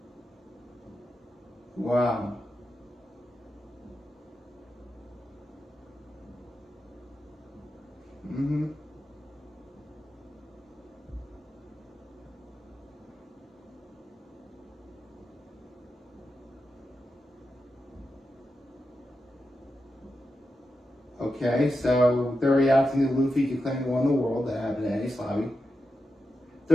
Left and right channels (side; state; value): both; normal; correlation 0.89